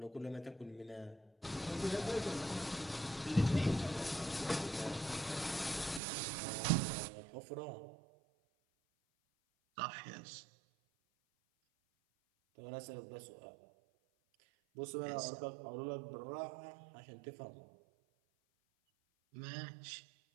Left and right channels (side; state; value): left; drops out; at 6.0 s